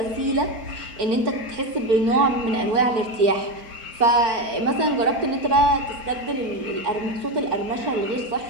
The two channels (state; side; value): late; left; 4.4 ms